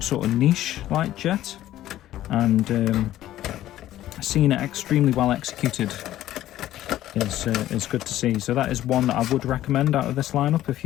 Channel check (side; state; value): right; quieter; 13.6 dB